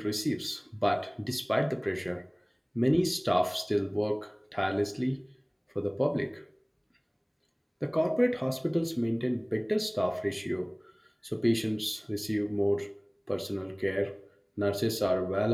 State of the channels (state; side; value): identical; both; correlation 1.00